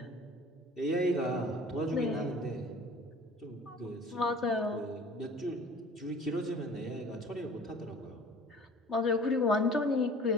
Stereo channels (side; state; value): both; normal; correlation 0.47